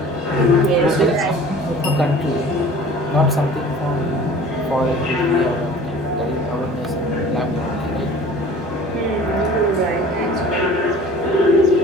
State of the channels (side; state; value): both; normal; correlation 0.45